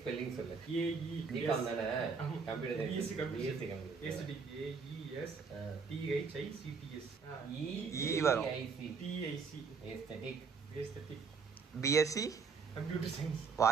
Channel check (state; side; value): quieter; left; 5.3 dB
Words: ஸ்பெல்லிங் சொல்லு. ஏஇ தீபம் தானே? கம்ப்யூட்டர் ஈஸி கம்ப்யூட்டர். ஏஸ்தட்டிக் ஏஇஎஸ் டிஹெச்ஐசிடிஎஸ் வரும். TIC aesthetic. Aesthetic BSc computer science.